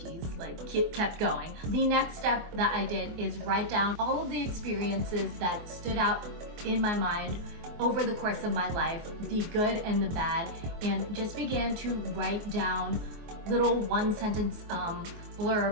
kept going. The next step that I did is write down all of the experiences that stood out in my mind over the course of my life, the good and the bad, and just began to write down little one-sentence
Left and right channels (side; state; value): left; late; 24 ms